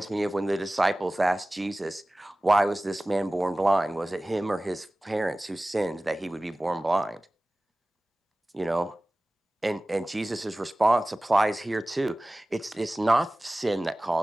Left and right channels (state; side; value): normal; both; correlation 0.97